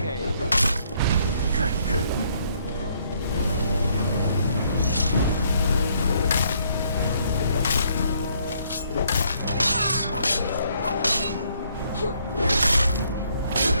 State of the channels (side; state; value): both; inverted; correlation -0.68